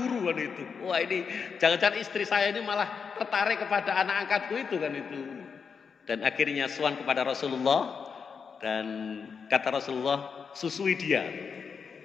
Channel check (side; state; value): right; quieter; 6.0 dB